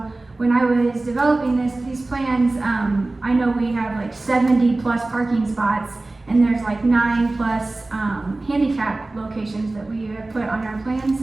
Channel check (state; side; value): quieter; left; 3.0 dB